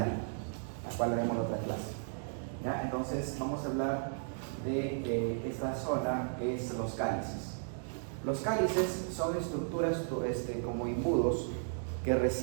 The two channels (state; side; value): silent; left; digital silence